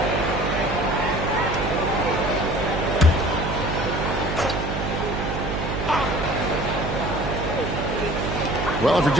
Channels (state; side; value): noise; right; hum, 4 dB below the sound